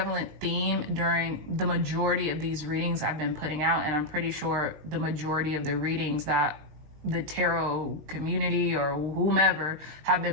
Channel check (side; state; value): left; late; 19 ms